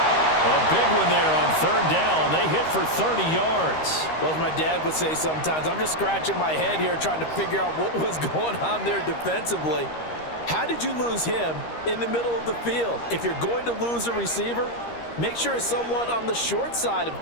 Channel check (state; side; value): late; right; 13 ms